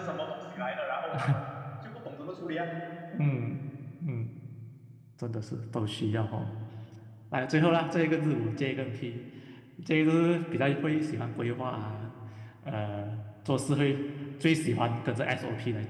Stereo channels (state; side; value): identical; both; correlation 1.00